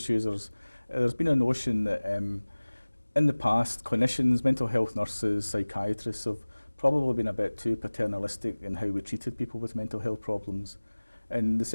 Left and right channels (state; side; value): inverted; both; correlation -1.00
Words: users, there's been a notion that in the past clinicians, mental health nurses, psychiatrists have probably been a bit too paternalistic in how we treated people with mental health problems. And the